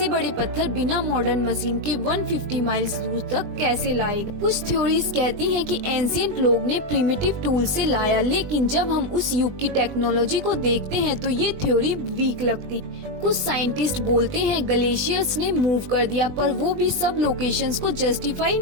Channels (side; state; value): left; late; 20 ms